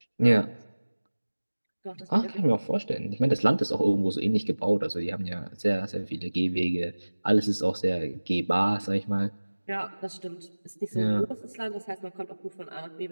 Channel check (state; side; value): inverted; both; correlation -1.00